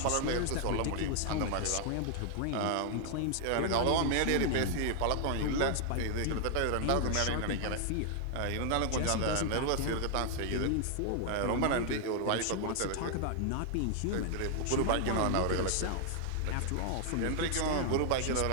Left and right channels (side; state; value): both; different; correlation 0.00